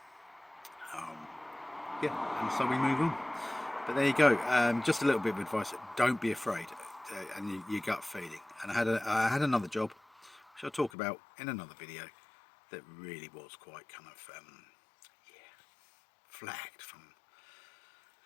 that. Yeah, and so we move on. But there you go. Just a little bit of advice: don't be afraid, and your gut feeling. And I had another job, which I'll talk about in another video, that really was quite kind of flagged from.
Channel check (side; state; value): right; drops out; at 10.9 s